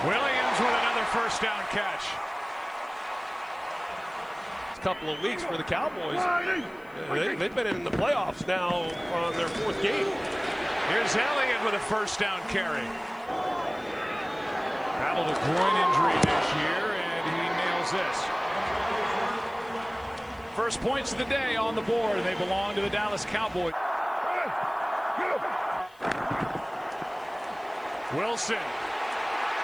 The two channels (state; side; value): noise; left; hiss, 30 dB below the sound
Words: Williams with another first down catch. Couple of weeks for the Cowboys. They've been in the playoffs now on their fourth game. Here's Elliott with a first down carry. Battled a groin injury this year, and he nails this. First points of the day on the board. They belong to the Dallas Cowboys. Wilson.